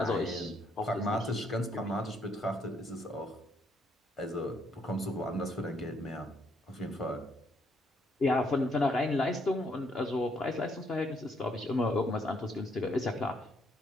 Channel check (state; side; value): normal; both; correlation 0.71